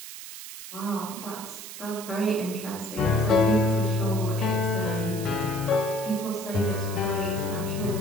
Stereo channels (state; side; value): noise; right; hiss, 11 dB below the sound